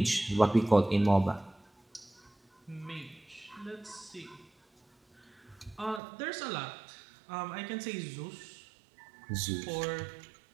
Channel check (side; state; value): left; drops out; at 6.0 s